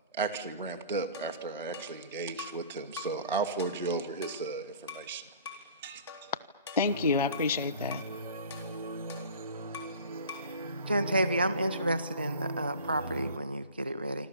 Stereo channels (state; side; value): inverted; both; correlation -0.44